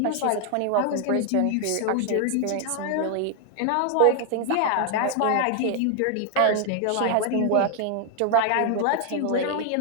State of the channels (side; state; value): both; different; correlation 0.00